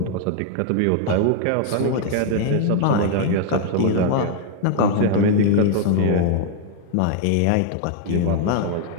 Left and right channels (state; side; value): different; both; correlation 0.00